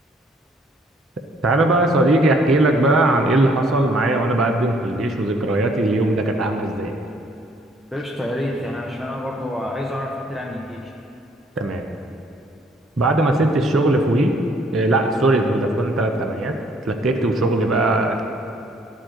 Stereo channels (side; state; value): both; normal; correlation 0.63